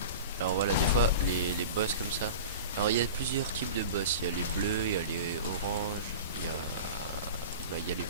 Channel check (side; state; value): both; inverted; correlation -0.33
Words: Alors voilà, des fois, les boss comme ça. Alors, il y a plusieurs types de boss. Il y a les bleus, il y a les oranges, il y a les